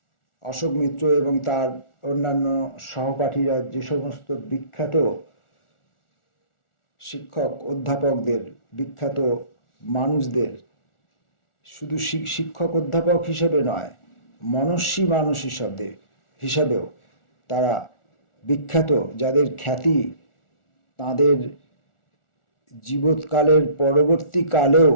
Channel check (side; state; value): right; late; 1.4 ms